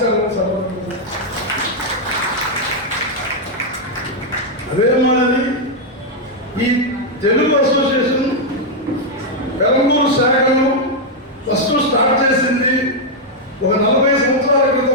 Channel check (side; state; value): both; normal; correlation -0.01